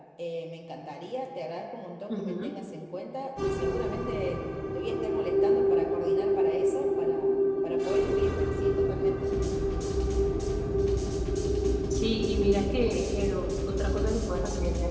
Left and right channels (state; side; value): identical; both; correlation 1.00